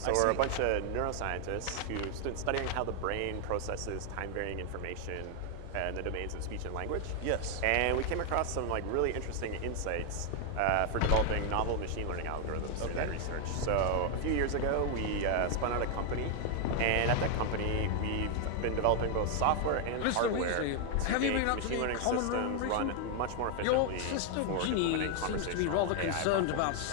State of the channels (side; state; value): both; different; correlation 0.00